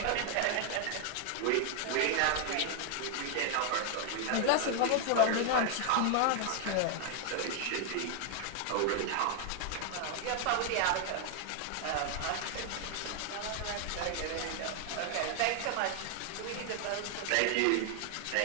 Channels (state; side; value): different; both; correlation 0.00